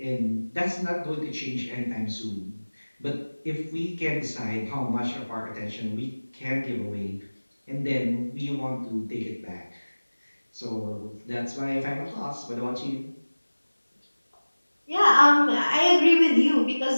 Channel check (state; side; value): inverted; both; correlation -1.00